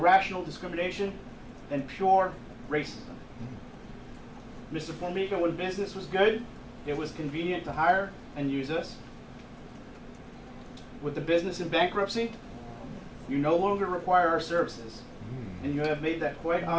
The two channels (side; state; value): both; identical; correlation 1.00